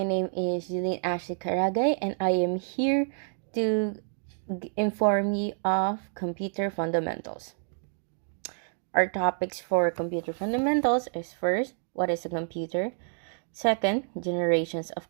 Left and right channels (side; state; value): left; silent; 59 dB below the other